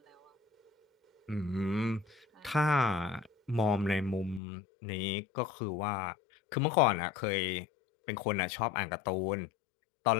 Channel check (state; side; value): drops out; right; at 4.4 s